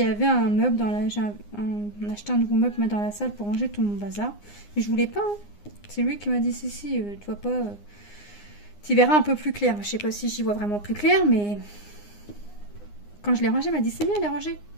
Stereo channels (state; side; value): late; right; 9.7 ms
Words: avait un meuble dans la... J'ai acheté un nouveau meuble dans la salle pour ranger tout mon bazar. Mais je voulais pas. Hein. C'est lui qui m'a dit si, tu vois pas... Tu verras un peu plus clair. Je sais pas si j'y vois vraiment plus clair, mais quand je l'ai rangé, il m'a dit c'est bien, elle est rangée.